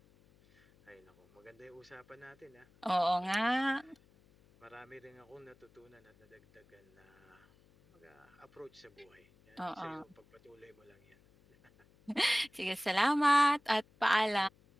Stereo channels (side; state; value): left; noise; hum, 30 dB below the sound